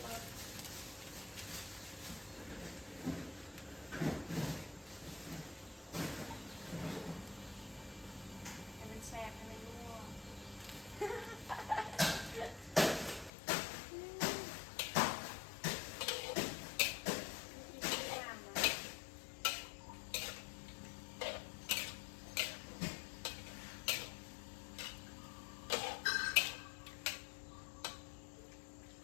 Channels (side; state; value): right; drops out; at 13.3 s